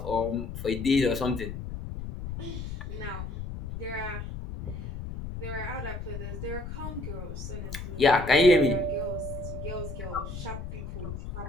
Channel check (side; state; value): left; noise; rumble, 7 dB below the sound